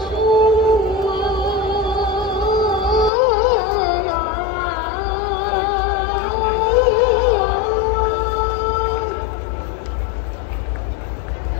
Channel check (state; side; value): drops out; right; at 3.1 s